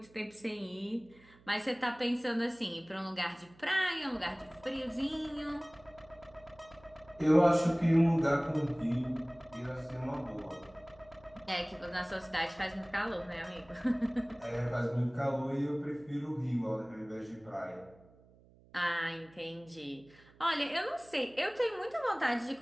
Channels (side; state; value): right; noise; hum, 26 dB below the sound